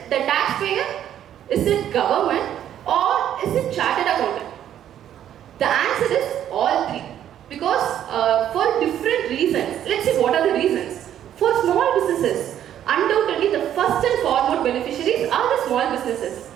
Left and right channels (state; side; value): quieter; left; 10.7 dB